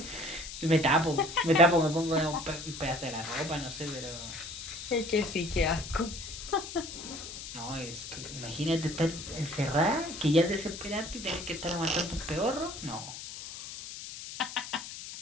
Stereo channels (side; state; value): left; noise; hiss, 10 dB below the sound